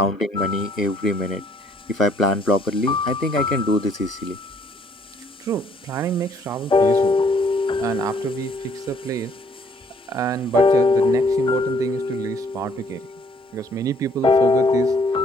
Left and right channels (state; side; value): normal; both; correlation 0.63